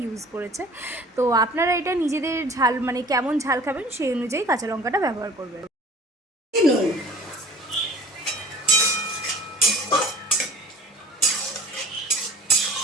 ইউজ করেছে। তো আপনারা এটা নিজেদের ঝাল কেমন ঝাল খাবেন সেই অনুযায়ী কাঁচা লঙ্কাটা ব্যবহার করবেন।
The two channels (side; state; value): both; normal; correlation 0.44